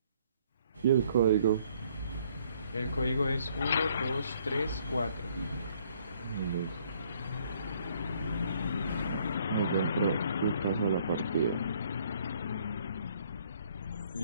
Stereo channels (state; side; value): inverted; both; correlation -0.64